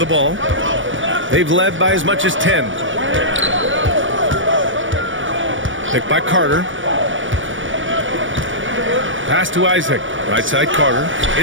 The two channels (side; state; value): left; late; 0.56 ms